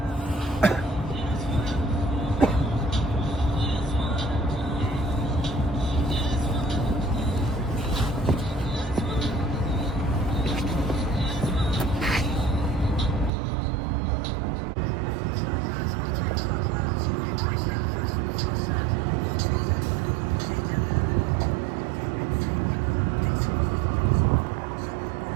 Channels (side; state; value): left; drops out; at 13.3 s